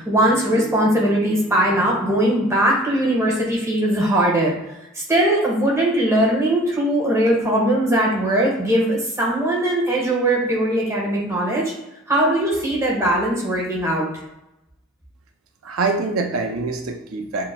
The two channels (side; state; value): both; normal; correlation 0.46